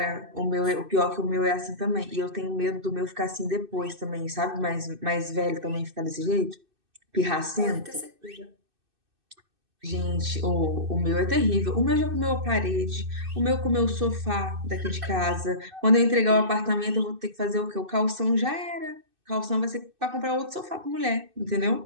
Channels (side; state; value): left; late; 2.6 ms